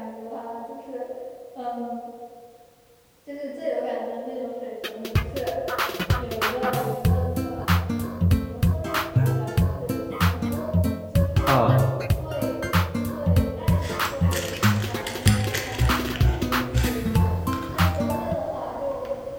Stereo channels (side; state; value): both; identical; correlation 1.00